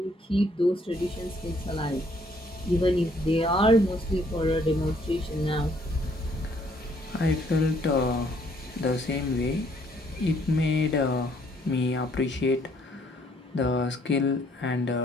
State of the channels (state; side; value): normal; both; correlation 0.66